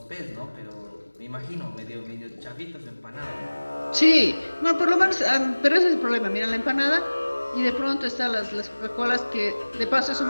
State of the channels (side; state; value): both; inverted; correlation -1.00